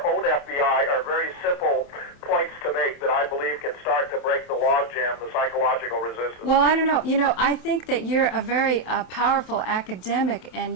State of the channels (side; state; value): right; late; 27 ms